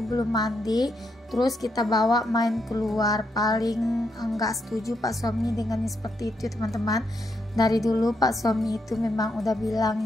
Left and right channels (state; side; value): normal; both; correlation 0.80